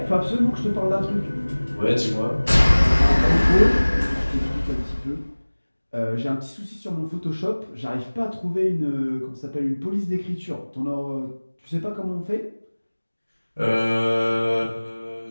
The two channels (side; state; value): both; inverted; correlation -1.00